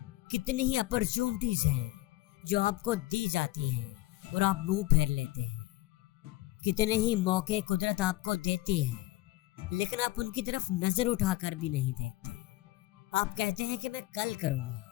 کتنی ہی اپرچونٹیز ہیں جو آپ کو دی جاتی ہیں اور آپ منہ پھیر لیتے ہیں، کتنے ہی موقع قدرت آپ کو دیتی ہے لیکن آپ ان کی طرف نظر اٹھا کر بھی نہیں دیکھتے۔ آپ کہتے ہیں کہ میں کل کروں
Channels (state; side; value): quieter; right; 17.7 dB